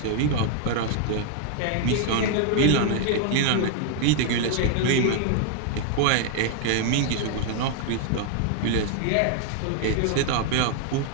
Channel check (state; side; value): different; both; correlation 0.00